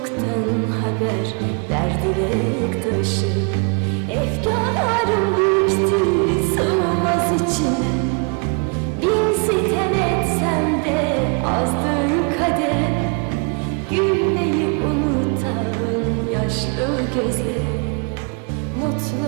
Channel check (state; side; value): quieter; left; 35.7 dB